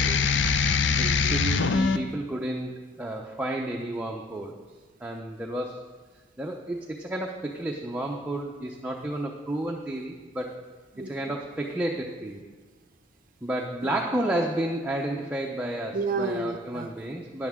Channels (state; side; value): normal; both; correlation 0.56